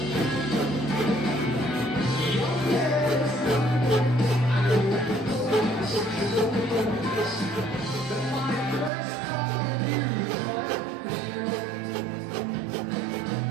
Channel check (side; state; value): left; drops out; at 8.9 s